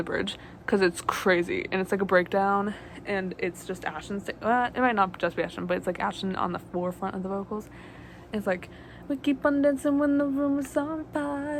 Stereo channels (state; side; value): identical; both; correlation 1.00